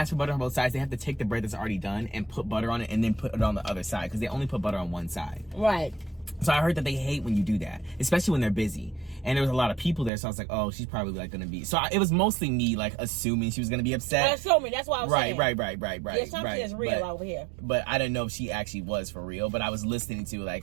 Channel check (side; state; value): left; drops out; at 10.1 s